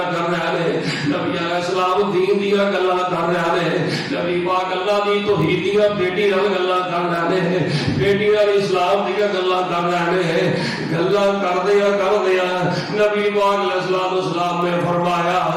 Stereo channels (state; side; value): identical; both; correlation 1.00